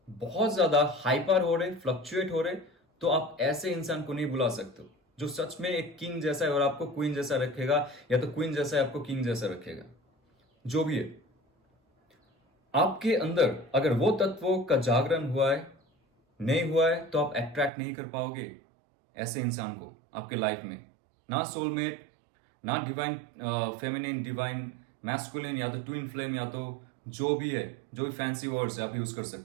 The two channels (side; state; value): left; drops out; at 17.7 s